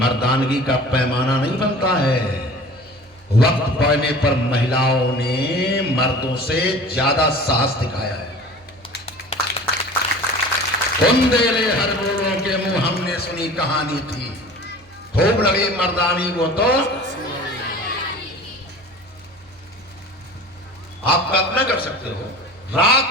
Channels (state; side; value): noise; right; hum, 29 dB below the sound